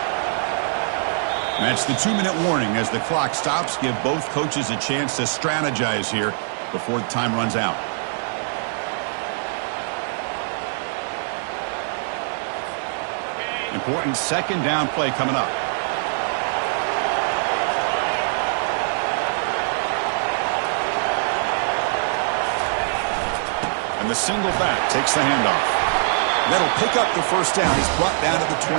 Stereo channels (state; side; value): silent; left; digital silence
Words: That's the 2-minute warning as the clock stops. Give both coaches a chance to strategize here before the time runs out. Important second down play coming up. And the single back takes the handoff. That'll pick up the first down. He's brought down to the